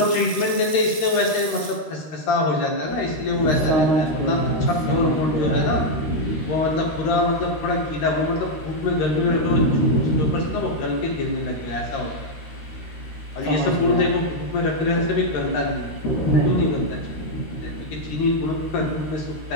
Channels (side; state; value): right; late; 13 ms